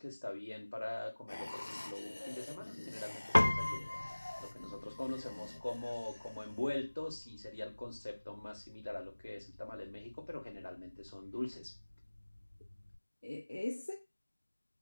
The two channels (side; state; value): both; inverted; correlation -1.00